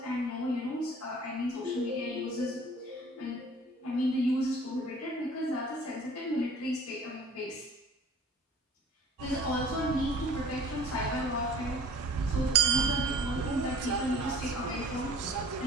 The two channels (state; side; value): normal; both; correlation 0.49